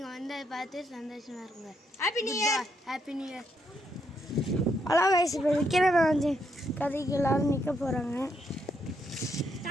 வந்து அதை பார்த்து சந்தோஷமாக இருங்க. Happy new year. Happy new year. Hello guys, இப்போ விக்ரமாதித்தியன் கதைக்கு எல்லாரும் நிற்க போகிறாங்க.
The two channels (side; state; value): both; normal; correlation 0.77